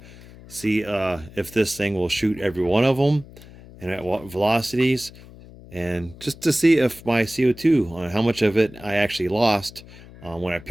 see if this thing will shoot every one of them and at what velocities, and just to see if my CO2, how much of it I actually lost when I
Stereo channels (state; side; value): noise; left; hum, 19 dB below the sound